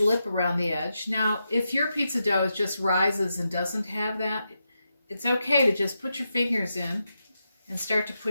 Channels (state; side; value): inverted; both; correlation -0.86